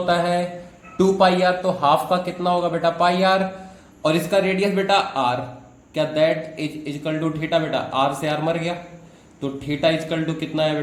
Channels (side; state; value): both; identical; correlation 1.00